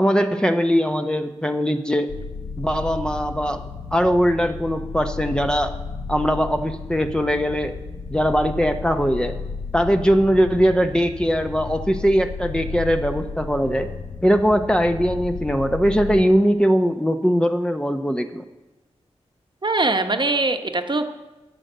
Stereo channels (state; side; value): normal; both; correlation 0.90